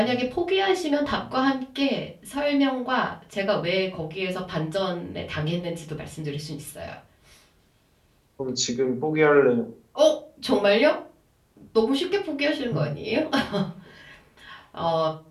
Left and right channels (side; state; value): both; identical; correlation 1.00